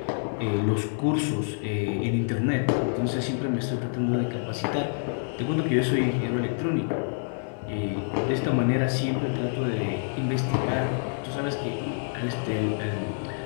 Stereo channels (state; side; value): silent; right; digital silence